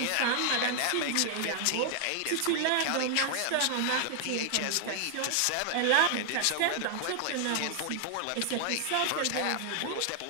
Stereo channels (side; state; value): both; different; correlation 0.00